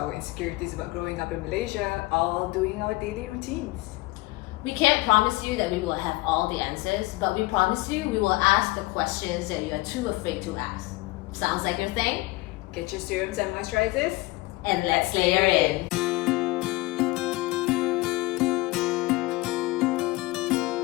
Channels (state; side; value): quieter; right; 21.0 dB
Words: insecurities about growing up in Malaysia, all doing our daily routines. We can't promise you that we will have all the answers, but we promise you we will ask the questions that you are too afraid to ask. Sounds like your thing? Get your serums and moisturizers, And let's layer in.